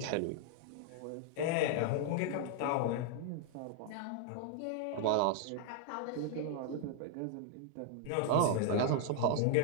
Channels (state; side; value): different; both; correlation -0.01